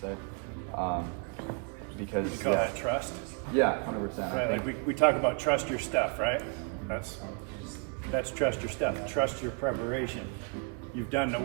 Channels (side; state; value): left; quieter; 37.4 dB